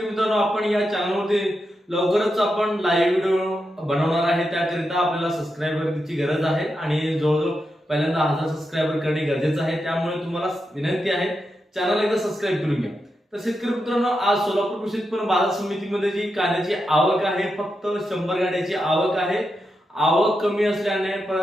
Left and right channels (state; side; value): normal; both; correlation 0.86